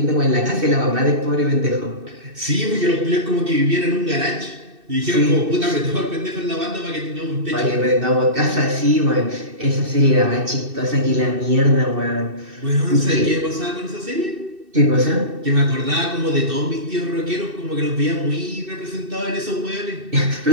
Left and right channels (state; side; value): late; left; 2.6 ms